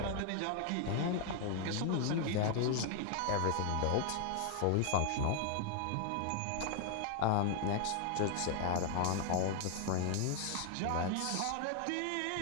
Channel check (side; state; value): both; different; correlation 0.00